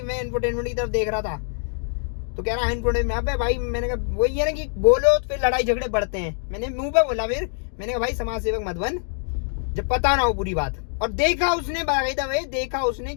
मैं इन्फोटेनमेंट की तरफ देख रहा था। तो कह रहा है इन्फोटेनमेंट पे भाई, मैंने कहा वही है ना कि बोलो तो फिर लड़ाई झगड़े बढ़ते हैं। मैंने मुंह पे बोला, फिर मैंने कहा भाई समाज सेवक मत बन जब पता ना हो पूरी बात। और देखा उसने बाकायदा भाई, देखा उसने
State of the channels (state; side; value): silent; right; 57 dB below the other